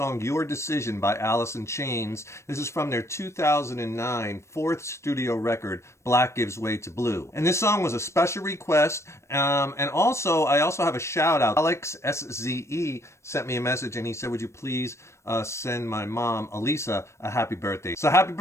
Your Decision by Alice in Chains. This is from their 2009 fourth studio record, Black Gives Way to Blue. And this song was a special request, and I also have a shout out. Alex SZE sent me a message and he said, would you please send my mom, Elisa, a happy birthday. So happy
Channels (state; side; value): late; right; 0.13 ms